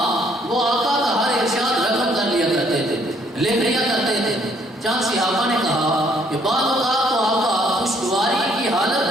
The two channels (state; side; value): normal; both; correlation 0.65